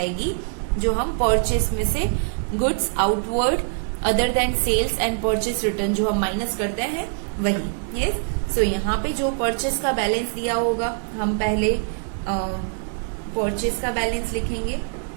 जो हम परचेस में से goods outward other than sales and purchase return जो हम माइनस करते हैं वही. यस, सो यहाँ पे जो परचेस का बैलेंस दिया होगा हम पहले परचेस का बैलेंस लिखेंगे.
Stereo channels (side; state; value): left; silent; 63 dB below the other